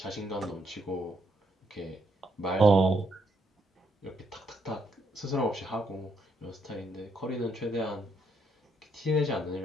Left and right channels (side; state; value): both; normal; correlation 0.75